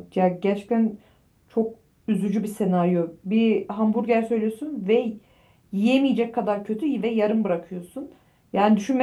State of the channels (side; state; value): both; identical; correlation 1.00